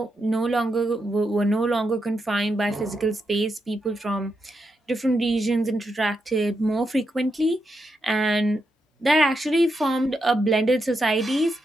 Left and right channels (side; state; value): both; normal; correlation 0.84